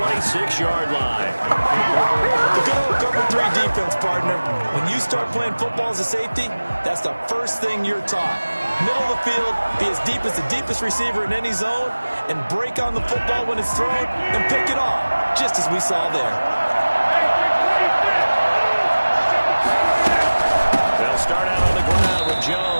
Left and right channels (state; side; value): inverted; both; correlation -1.00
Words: line. The good old cover 3 defense, partner. When you start playing football as a safety, that's the first thing you're taught. Middle of the field, be as deep as the deepest receiver in any zone, and break on the football when it's thrown, and pick it off, just as we saw there. Start out on the ground with